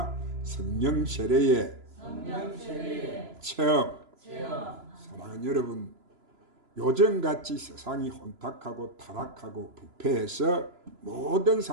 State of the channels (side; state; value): left; late; 3.0 ms